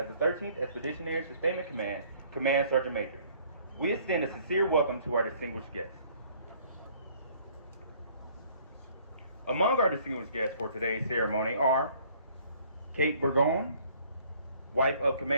the 13th Expeditionary Sustainment Command Command Sergeant Major. We extend a sincere welcome to our distinguished guests. Among our distinguished guests for today's ceremony are Kate Burgoyne, wife of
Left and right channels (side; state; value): both; inverted; correlation -0.59